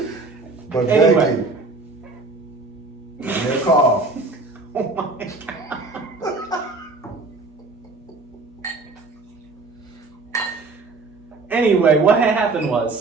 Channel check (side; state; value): left; quieter; 3.5 dB